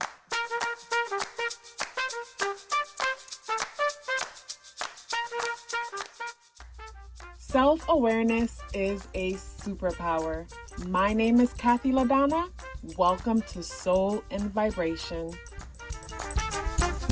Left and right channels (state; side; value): identical; both; correlation 1.00